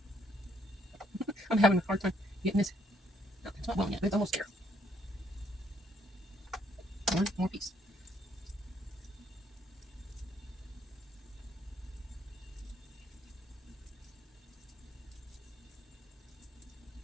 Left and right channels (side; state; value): both; normal; correlation 0.69